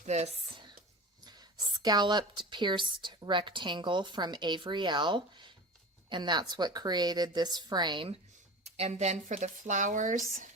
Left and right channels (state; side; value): normal; both; correlation 0.33